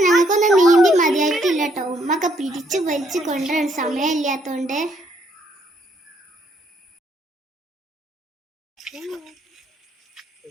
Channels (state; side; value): normal; both; correlation 0.70